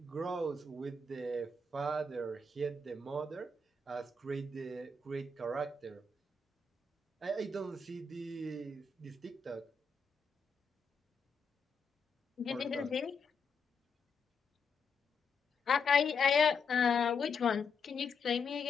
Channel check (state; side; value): quieter; right; 3.8 dB